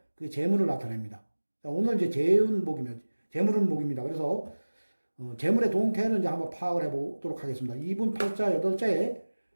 그 재물을 나타냅니다. 자, 오늘 이제 재물은 목입니다. 그래서 재물의 동태를 이제 한번 파악을 해보도록 하겠습니다. 이분 팔자, 여덟자에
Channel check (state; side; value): inverted; both; correlation -1.00